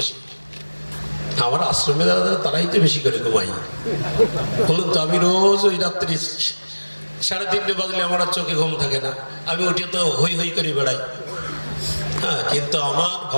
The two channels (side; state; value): both; inverted; correlation -1.00